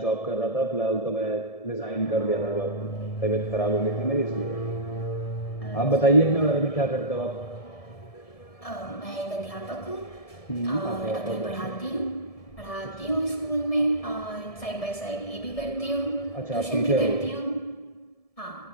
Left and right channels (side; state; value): right; late; 1.7 ms